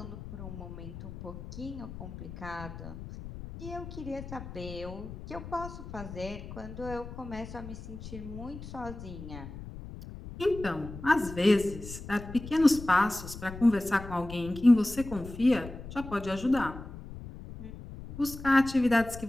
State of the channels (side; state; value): left; noise; rumble, 12 dB below the sound